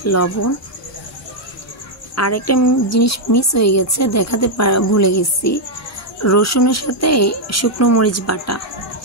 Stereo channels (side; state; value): both; normal; correlation -0.02